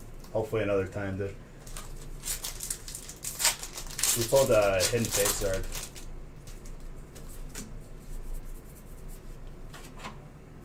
Hopefully another time, dude. We pulled a Hidden Fate Zard.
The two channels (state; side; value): identical; both; correlation 1.00